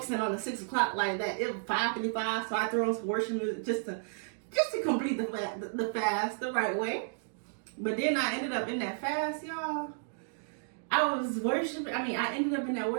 on the 6 o'clock like that. It was 5:55, so I threw on some worship music just to complete the fast the right way. But then I ended up in that fast, y'all. I was worshiping. I ended up in that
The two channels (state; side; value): silent; left; digital silence